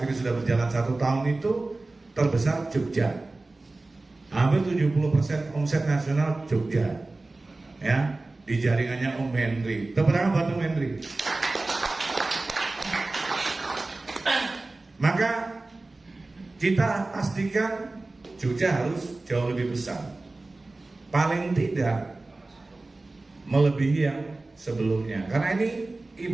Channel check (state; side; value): quieter; left; 3.2 dB